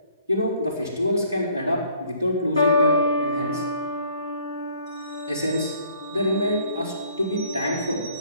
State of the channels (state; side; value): inverted; both; correlation -0.59